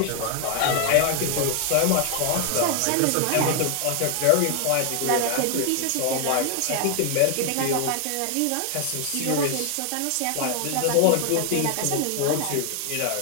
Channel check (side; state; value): both; different; correlation 0.00